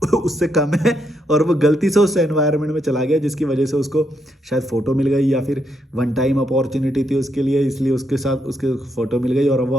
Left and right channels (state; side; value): normal; both; correlation 0.78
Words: उससे कम है, और वो गलती से उस एनवायरनमेंट में चला गया जिसकी वजह से उसको शायद फ़ोटो मिल गई, या फिर वन टाइम अपॉर्चुनिटी थी उसके लिए, इसलिए उसके साथ उसके फ़ोटो मिल गई और वो